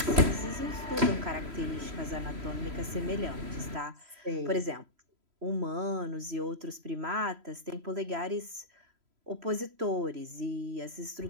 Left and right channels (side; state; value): left; late; 3.0 ms